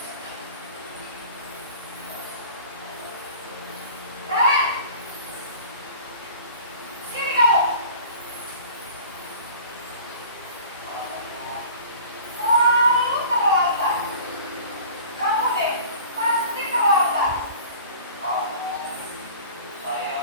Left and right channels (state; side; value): inverted; both; correlation -0.43